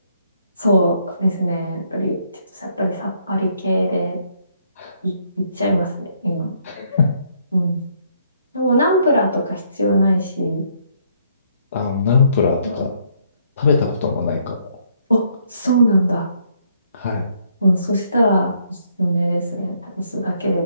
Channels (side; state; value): both; inverted; correlation -0.70